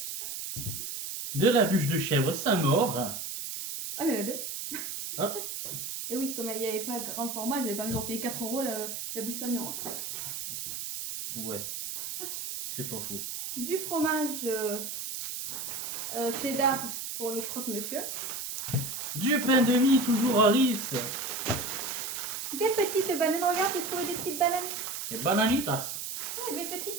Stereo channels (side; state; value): right; noise; hiss, 5 dB below the sound